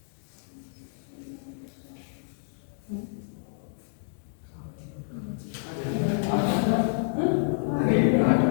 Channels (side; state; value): right; silent; digital silence